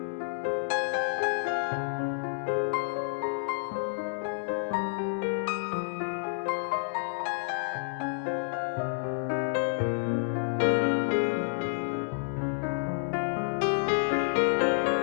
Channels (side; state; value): right; silent; digital silence